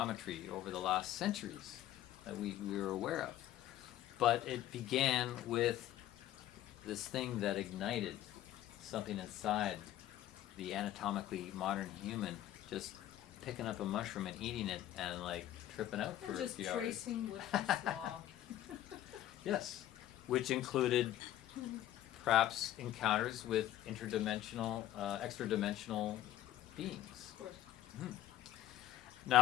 over the last centuries that we were aware of. But it began with this thing that ignited something inside the anatomically modern human, just picking up a mushroom and eating it and like tripping out for And a just few hours. tracing what you saw. Yes, which included perhaps encounters with interdimensional, extra-dimensional beings. Of course.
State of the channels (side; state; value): right; quieter; 13.2 dB